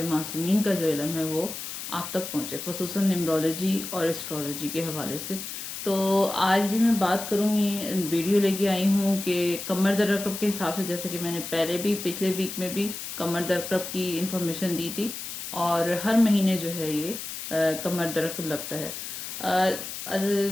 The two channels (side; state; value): left; noise; hiss, 8 dB below the sound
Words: معصومین کا جو علم ہے وہ آپ تک پہنچے، خصوصاً نیمرولوجی اور اسٹرولوجی کے حوالے سے. تو آج بھی میں بات کروں گی، ویڈیو لے کے آئی ہوں کہ کمر در عقرب کے حساب سے، جیسے کہ میں نے پہلے بھی پچھلے ویک میں بھی کمر در عقرب کی انفارمیشن دی تھی، اور ہر مہینے جو ہے یہ کمر در عقرب لگتا ہے.